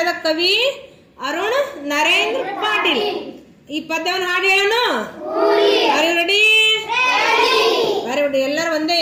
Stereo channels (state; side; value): identical; both; correlation 1.00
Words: ಕವಿ ಅರುಣ್ ನರೇಂದ್ರ ಪಾಟೀಲ್. ಈ ಪದ್ಯವನ್ನು ಹಾಡಿ ಹೇಳನು. ರೆಡಿ? Very good. ಎಲ್ಲರೂ ಒಂದೇ